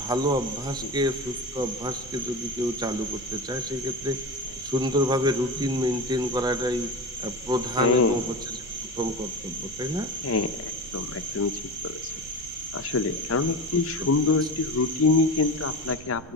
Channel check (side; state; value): right; noise; rumble, 19 dB below the sound